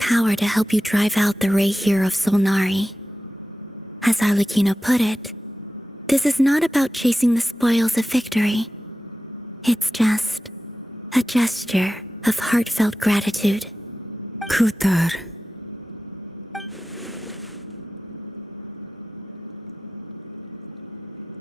to help you drive out the Ray here of Solnari. As Arlecchino put it, this is not about chasing the spoils of victory. It's just a gesture of heartfelt gratitude. Kutar.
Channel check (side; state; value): both; normal; correlation 0.93